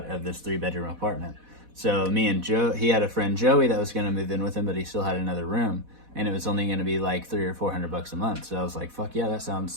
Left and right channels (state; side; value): late; left; 4.1 ms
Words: of this 3-bedroom apartment. So me and Joe, he had a friend Joey that was going to move in with him, but he still had another room, and it was only going to be like $300 or $400 a month. So I was like, fuck yeah, that